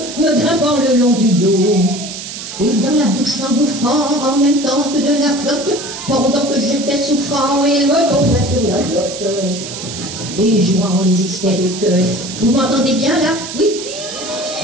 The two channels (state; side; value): noise; right; hiss, 9 dB below the sound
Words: me grimpant le long du dos. Et dans la bouche s'engouffrant, en même temps que de la flotte, pendant que j'étais souffrant, il me tombait sur la glotte. Et jouant les hystériques. Vous m'entendez bien là? Oui?